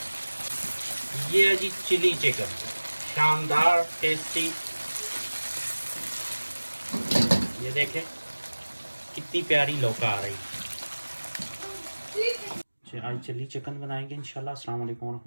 ये है जी चिली चिकन, शानदार टेस्टी। ये देखें कितनी प्यारी लौका आ रही है। आज चिली चिकन बनाएंगे इंशाल्लाह। अस्सलाम वालेकुम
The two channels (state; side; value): inverted; both; correlation -1.00